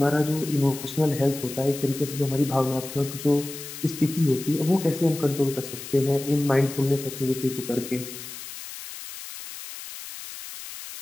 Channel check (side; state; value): left; noise; hiss, 11 dB below the sound